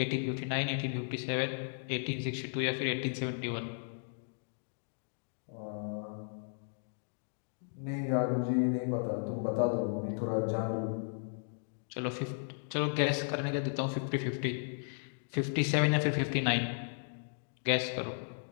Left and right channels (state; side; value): silent; right; digital silence